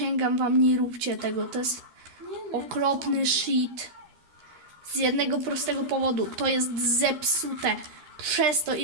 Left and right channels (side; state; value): left; late; 12 ms